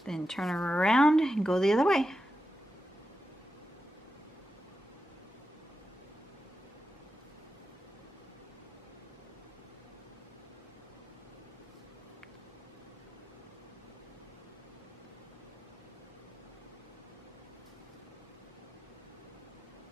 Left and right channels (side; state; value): both; normal; correlation 0.90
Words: Then turn her around and go the other way.